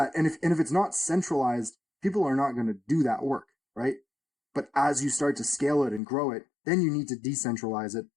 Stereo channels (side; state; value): right; drops out; at 6.0 s